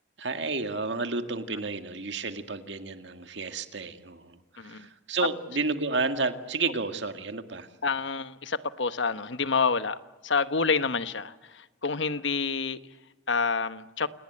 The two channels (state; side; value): normal; both; correlation -0.19